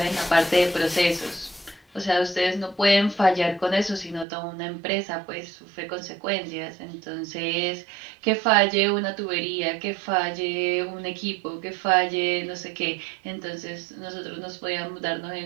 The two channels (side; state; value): left; drops out; at 4.2 s